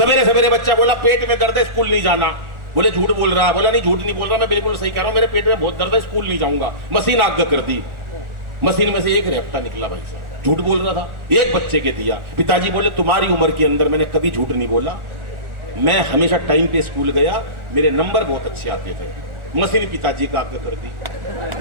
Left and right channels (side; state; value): left; late; 1.4 ms